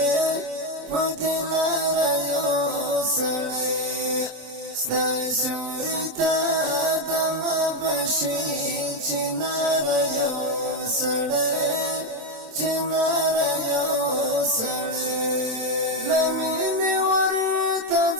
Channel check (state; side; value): late; left; 27 ms